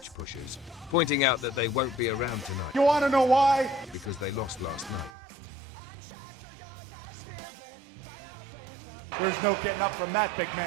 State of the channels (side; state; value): left; drops out; at 5.1 s